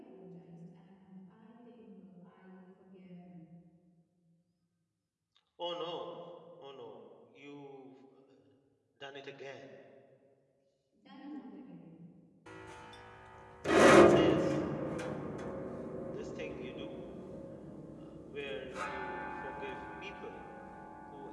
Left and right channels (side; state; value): both; identical; correlation 1.00